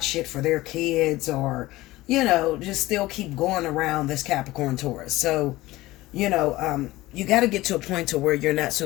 shit for their kids or, you know, just still keep going around this Capricorn, Taurus. So, you know, you got to get to a point to where you're not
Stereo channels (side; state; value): right; quieter; 18.2 dB